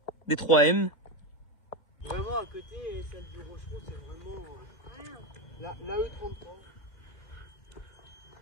des 3M. Vraiment, à côté, celle du Rochereau, c'est vraiment la E33.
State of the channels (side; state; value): right; late; 2.0 ms